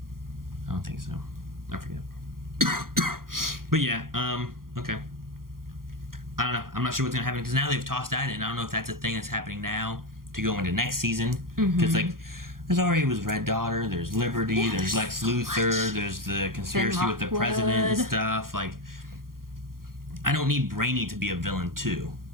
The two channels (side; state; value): left; late; 0.92 ms